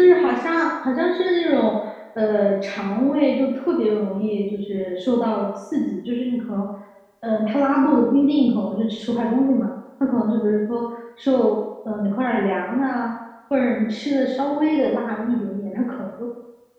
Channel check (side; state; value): both; identical; correlation 1.00